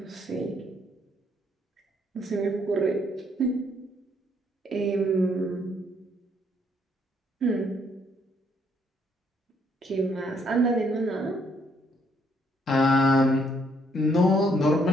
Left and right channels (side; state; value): both; normal; correlation 0.70